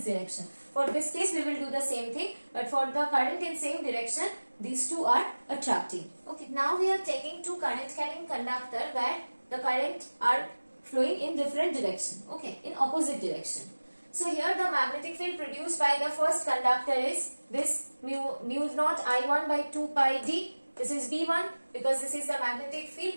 direction. For this case, we will do the same thing, but for the current in same direction, these two are attracting. Okay. Now we are taking two current carrying conductor where the current are flowing in different direction. Okay, in opposite direction. So here the magnetic field produced by the first conductor is this mu naught I1 by 2 pi d. This is B1 because this is the magnetic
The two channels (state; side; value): inverted; both; correlation -1.00